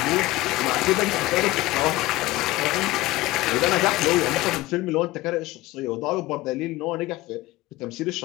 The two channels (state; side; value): quieter; right; 18.7 dB